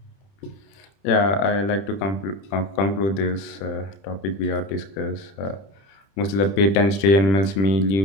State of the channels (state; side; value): late; right; 30 ms